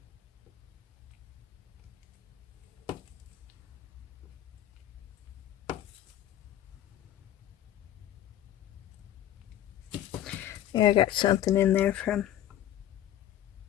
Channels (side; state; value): right; quieter; 12.1 dB